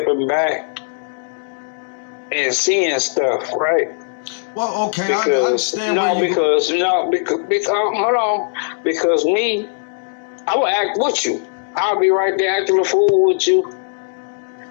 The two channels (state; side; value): silent; right; digital silence